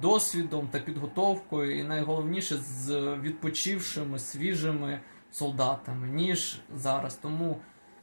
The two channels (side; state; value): both; inverted; correlation -1.00